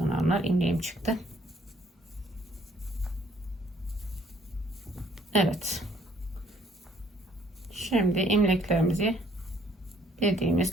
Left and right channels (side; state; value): both; normal; correlation 0.63